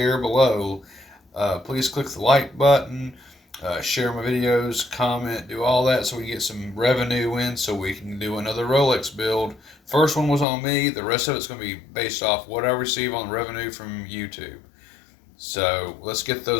below. Please click the like button, share my videos, comment, do all that so we can get some revenue in so we can do another Rolex build. First one was on me. The rest of it's going to be based off what I receive on revenue from YouTube. So let's get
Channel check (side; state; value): right; drops out; at 10.5 s